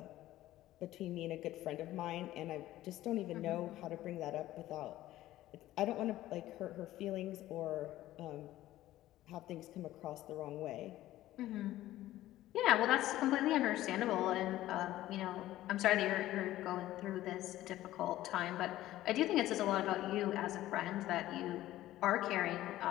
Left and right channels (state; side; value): quieter; right; 14.9 dB